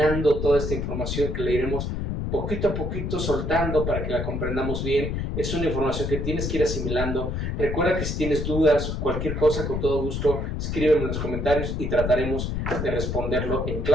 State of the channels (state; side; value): noise; left; rumble, 2 dB below the sound